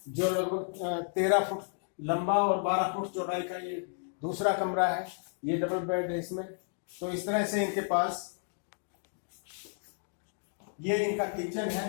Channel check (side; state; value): right; silent; digital silence